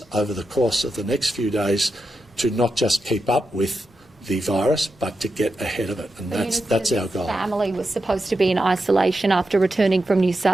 over the course of the next few days to not just keep up with the virus, but to get ahead of it, and that's our goal. Family was supposed to be in isolation after returning from New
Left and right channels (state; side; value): normal; both; correlation 0.88